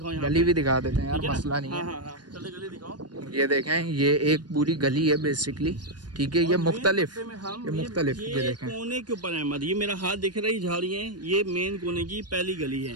गली भी दिखा देते हैं यार, मसला नहीं है। हाँ, चलो गली दिखाओ। ये देखें, ये एक पूरी गली है बेसिकली, ठीक है, ये मुख्तलिफ, ये देखें कोने के ऊपर अहमद, ये मेरा हाथ दिख रही झाड़ियाँ, ये मेन कोने की पहली गली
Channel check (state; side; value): late; left; 0.70 ms